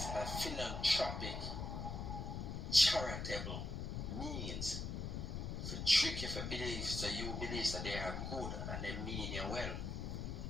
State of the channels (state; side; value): noise; left; rumble, 4 dB below the sound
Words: a philanthropic, charitable means to trick you for belief, so you believe that they are good and they mean you well.